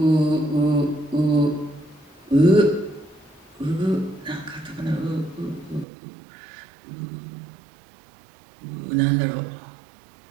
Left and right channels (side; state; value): left; drops out; at 5.9 s